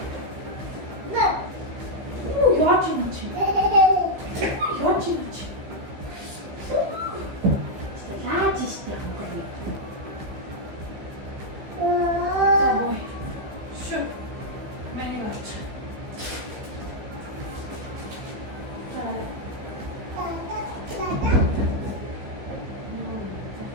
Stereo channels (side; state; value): left; late; 15 ms